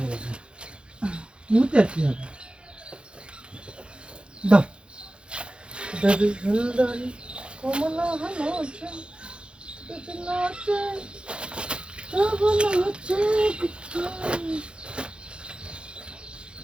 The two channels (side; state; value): left; late; 0.055 ms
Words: মুতে কি হবে দাও দাদি সুন্দরী কমলা নাচে নাচে তব নাচে